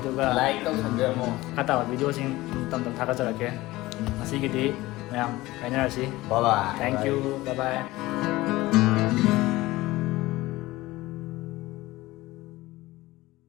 aduga Like đâu thành ra mà. kata video sing tam thaka chara ke ngasi gi di mayam kainara si Bye bye. thank you bye bye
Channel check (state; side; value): quieter; right; 18.7 dB